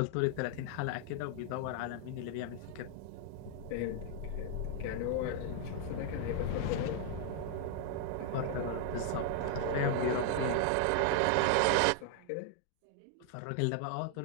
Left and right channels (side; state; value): both; different; correlation -0.01